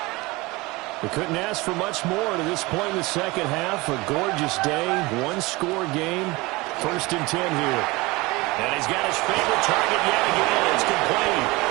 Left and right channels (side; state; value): left; quieter; 22.7 dB